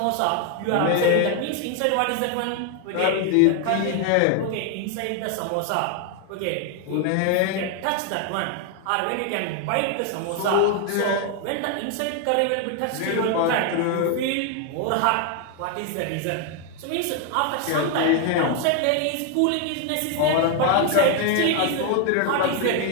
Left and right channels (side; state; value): both; different; correlation 0.01